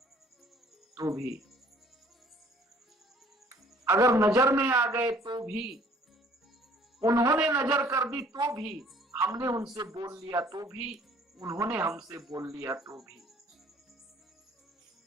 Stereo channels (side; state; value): both; normal; correlation 0.56